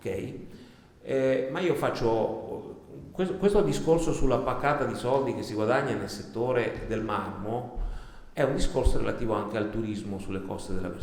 Ma io faccio questo discorso sulla paccata di soldi che si guadagna nel settore del marmo. È un discorso relativo anche al turismo sulle coste della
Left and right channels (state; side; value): identical; both; correlation 1.00